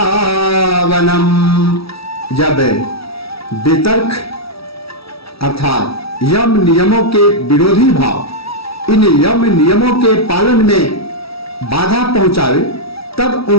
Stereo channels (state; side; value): late; right; 0.76 ms